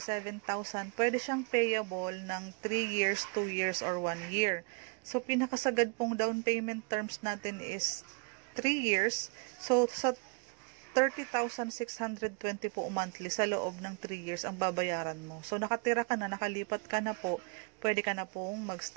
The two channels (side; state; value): left; quieter; 34.1 dB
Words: Pwede siyang payable ng 3 years, 2 years, or 1 year. So, pinakasagad pong down payment terms natin is 3 years. So, sa 30,620 po monthly sa loob ng 3 years ang babayaran mo. So, nakatira ka na, nakalipat ka na po, pwede ka na pong